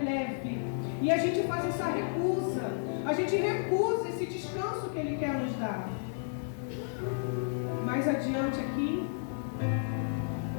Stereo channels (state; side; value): silent; right; digital silence